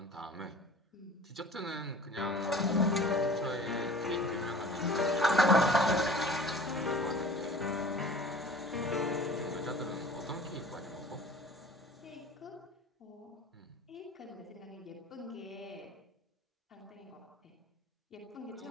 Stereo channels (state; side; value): normal; both; correlation 0.44